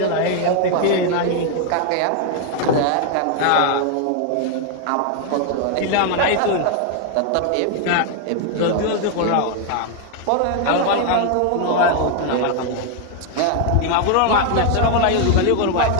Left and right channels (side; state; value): both; different; correlation 0.00